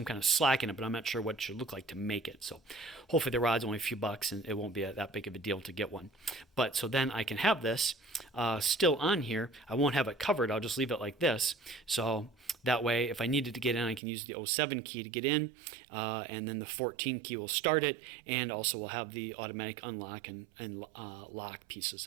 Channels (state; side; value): drops out; left; at 14.0 s